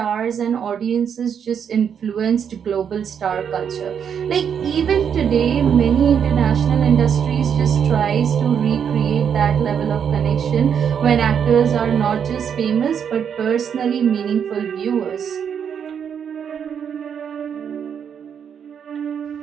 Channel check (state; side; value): quieter; left; 7.8 dB